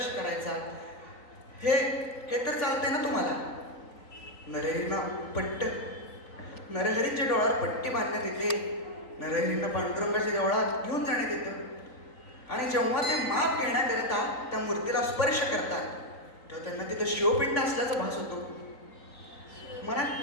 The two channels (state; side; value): late; right; 3.9 ms